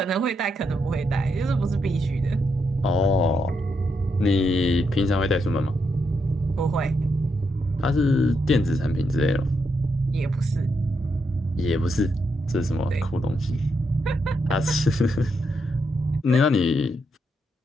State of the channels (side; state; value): both; normal; correlation 0.81